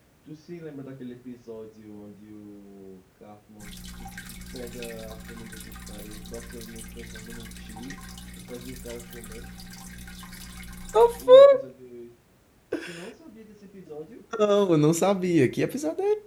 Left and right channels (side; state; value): both; identical; correlation 1.00